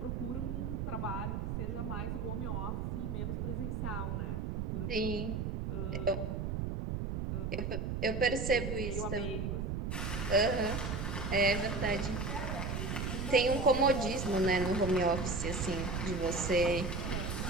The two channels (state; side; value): noise; right; rumble, 2 dB below the sound